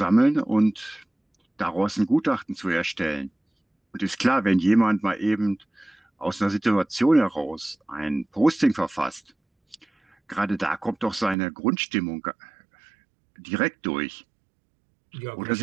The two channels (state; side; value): drops out; left; at 11.4 s